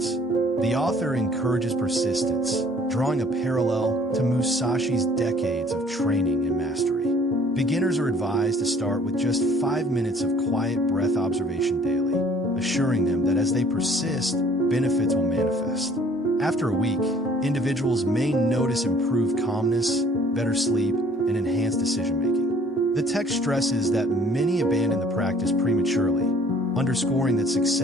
The author encourages persistence, drawing a parallel to Musashi's decades of training and mastery. Beginners are advised to start with just 5 minutes of quiet breath observation daily, assuring them that as they persist, benefits will manifest. After a week, individuals may notice improved calmness, better sleep, and enhanced decision-making. The text stresses that many abandon the practice prematurely, underscoring that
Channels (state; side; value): normal; both; correlation 0.56